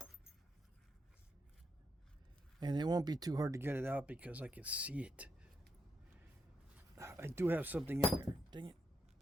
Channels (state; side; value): normal; both; correlation 0.81